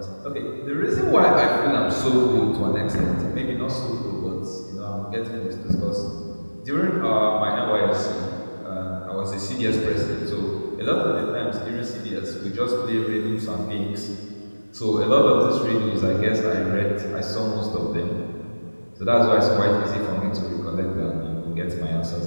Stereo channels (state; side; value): inverted; both; correlation -1.00